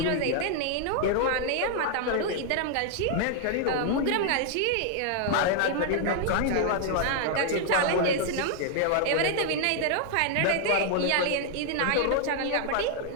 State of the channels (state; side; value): different; both; correlation 0.00